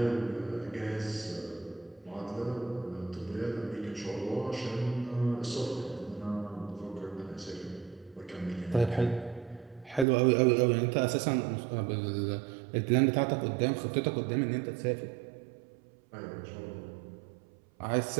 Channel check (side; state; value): left; drops out; at 10.1 s